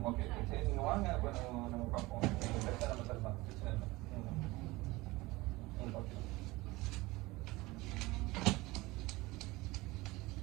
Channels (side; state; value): left; quieter; 21.1 dB